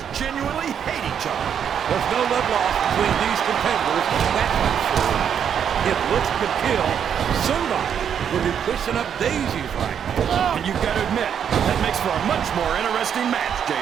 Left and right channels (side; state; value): left; quieter; 8.3 dB